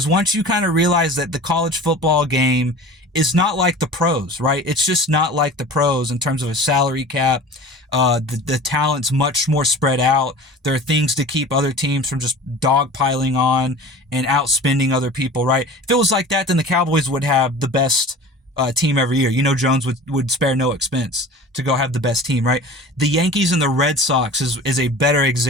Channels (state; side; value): normal; both; correlation 0.39